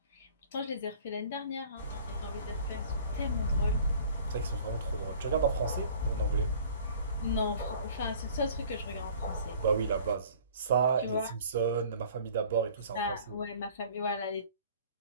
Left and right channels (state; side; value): inverted; both; correlation -0.50